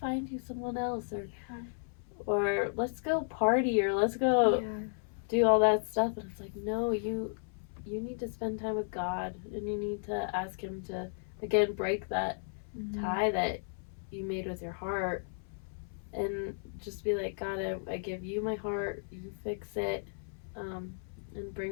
find you someone else, or let's go party, or let's go do all that stuff. And it's like, no, you need to spend time with God, and you need to ask Him to, again, break that tie that you made with your heart, and just be like, God, I give you my heart, you fix it, and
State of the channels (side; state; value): right; silent; 55 dB below the other